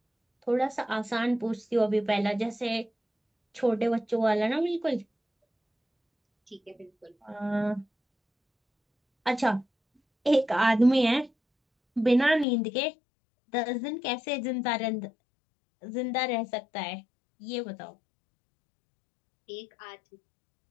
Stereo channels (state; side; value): drops out; right; at 12.5 s